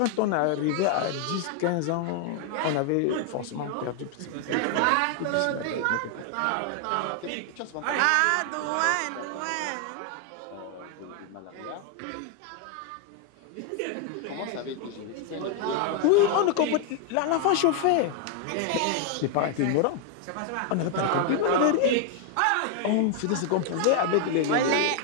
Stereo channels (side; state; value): both; different; correlation 0.00